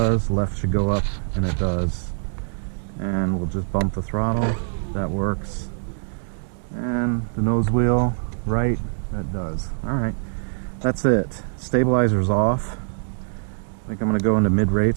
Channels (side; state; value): left; silent; digital silence